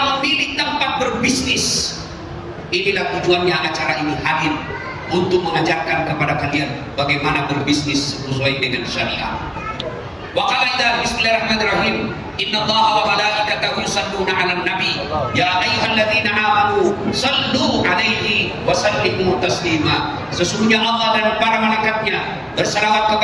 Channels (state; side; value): identical; both; correlation 1.00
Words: memilih tempat berbisnis. Inilah tujuannya acara ini hadir, untuk mengajarkan kepada kalian bagaimana berbisnis sesuai dengan syariat. Wa qala bismillahirrahmanirrahim. Innallaha wa malaikatahu yusalluna 'alan nabi ya ayyuhalladzina amanu sallu 'alaihi wa sallimu taslima. Sesungguhnya Allah dan para malaikatnya bersalawat